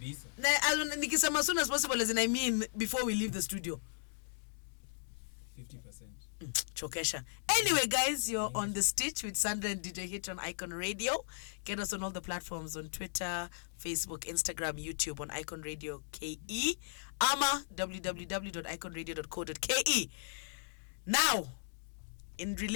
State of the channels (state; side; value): silent; right; digital silence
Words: Nikisema as soon as possible, as in I mean before we leave the studio. 50%. Chokesha. Anyway, guys, you're on The Stitch with Sandra and DJ Hitch on Icon Radio. Get us on all the platforms on Twitter, Facebook, Instagram, YouTube on Icon Radio KE. Ama www.iconradio.co.ke. Now, in